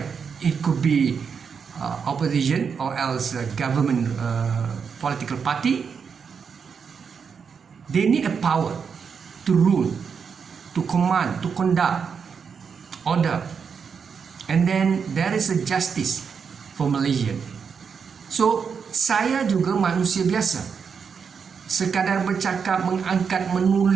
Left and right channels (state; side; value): quieter; left; 6.2 dB